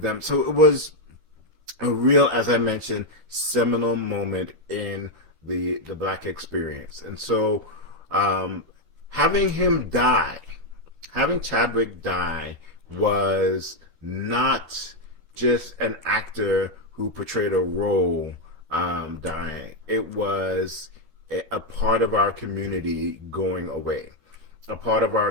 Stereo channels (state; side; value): late; left; 13 ms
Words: So it was a real, as I mentioned, seminal moment in the black experience. And so having Chadwick die was not just an actor who portrayed a role dying. It was a part of our community going away, a part of